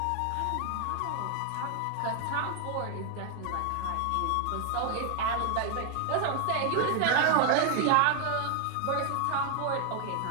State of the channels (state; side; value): different; both; correlation 0.00